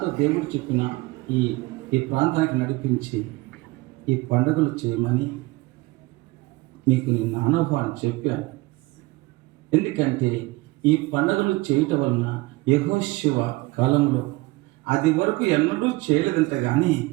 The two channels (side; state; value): left; quieter; 21.7 dB